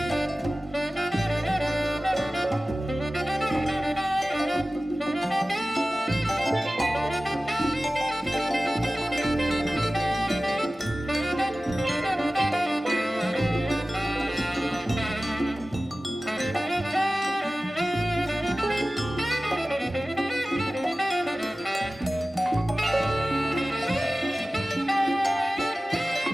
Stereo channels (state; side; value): normal; both; correlation 0.97